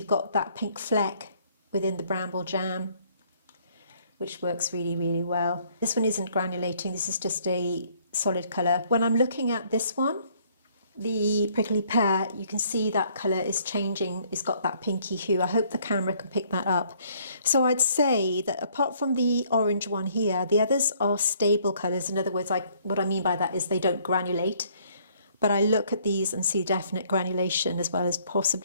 got that pink fleck within the bramble jam, which works really, really well. This one isn't granulating, this is just a solid colour. When I'm looking at this one, the prickly pear, you can see that colour is changing. It's got that pinky hue. I hope the camera can pick that up. So I'd say that apart from the orange one here, the others are stable colours. In other words, what I mean by that is they don't granulate. But I look at these and see definite granulation as well as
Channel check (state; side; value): inverted; both; correlation -0.64